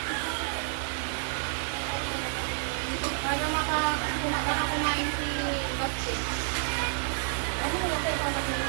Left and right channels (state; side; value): silent; left; 55 dB below the other